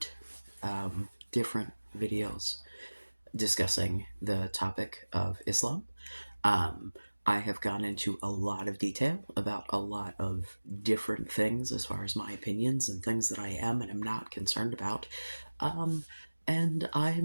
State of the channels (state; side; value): inverted; both; correlation -1.00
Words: different videos discussing the topic of Islam. Um, I have gone into a lot of detail about a lot of different things as far as my opinions and things that I am and am not concerned about. Um, and